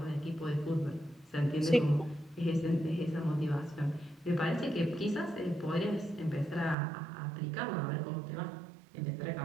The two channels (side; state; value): left; drops out; at 6.8 s